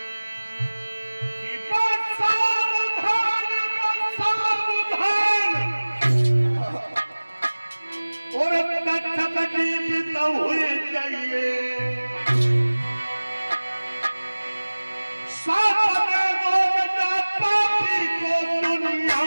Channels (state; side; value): inverted; both; correlation -1.00